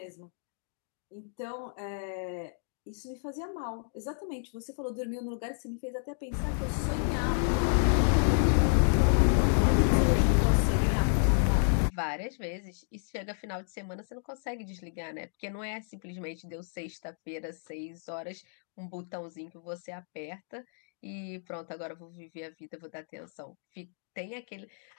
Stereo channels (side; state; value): right; silent; digital silence